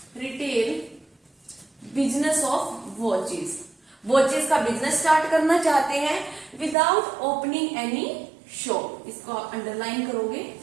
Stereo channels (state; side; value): drops out; left; at 6.8 s